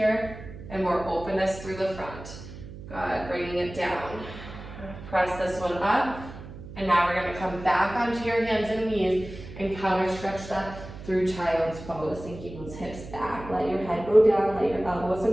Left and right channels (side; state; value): right; noise; hum, 13 dB below the sound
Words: and more openness through the front. Good, bringing it down. Press this one up. And now we're gonna come back onto your hands and knees and counter stretch that through child's pose, and keep those hips back. Let your head go down, let your elbows